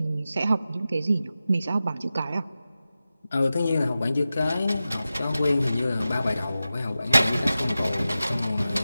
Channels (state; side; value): inverted; both; correlation -0.94